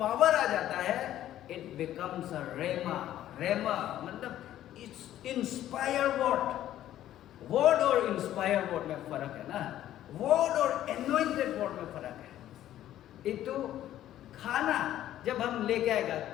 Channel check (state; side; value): quieter; right; 12.6 dB